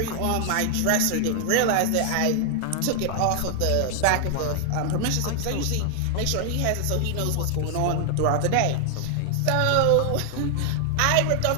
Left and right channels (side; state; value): both; different; correlation 0.00